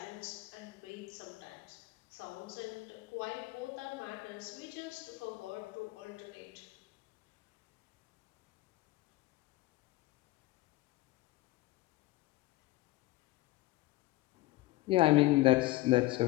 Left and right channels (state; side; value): quieter; right; 18.7 dB